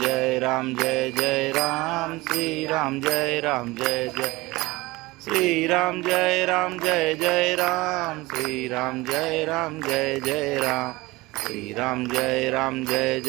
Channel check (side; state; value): left; quieter; 21.1 dB